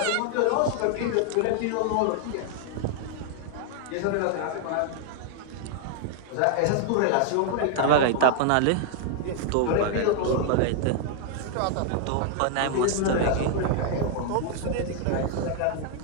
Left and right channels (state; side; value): different; both; correlation 0.00